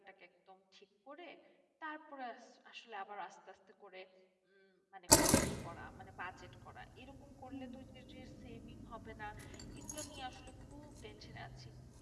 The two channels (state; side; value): identical; both; correlation 1.00